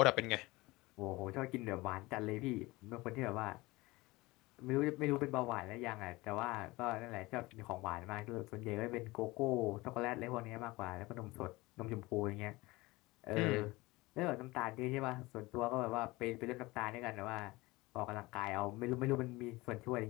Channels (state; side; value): quieter; right; 21.3 dB